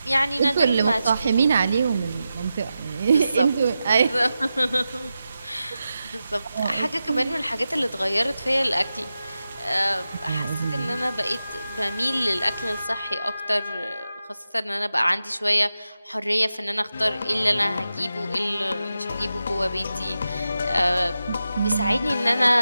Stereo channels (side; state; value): both; inverted; correlation -0.91